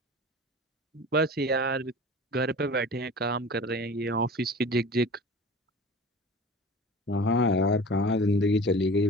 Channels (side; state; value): both; normal; correlation 0.39